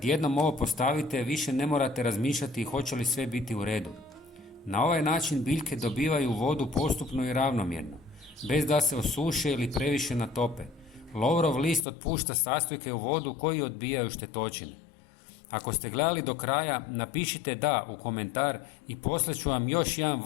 jednom ovo postavite, više ne morate razmišljati hoće li sve biti u redu. Na ovaj način biljke dobivaju vodu postupno i ravnomjerno, bez da se osuše ili previše natope. Lovorov list otpušta sastojke u vodu koji odbijaju štetočine. Ako ste gledali do kraja, napišite da u komentar i poslat ću vam još jedan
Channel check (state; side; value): drops out; right; at 11.9 s